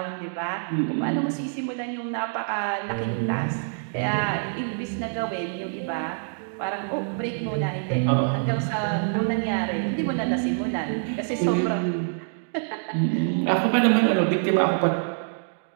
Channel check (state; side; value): silent; left; digital silence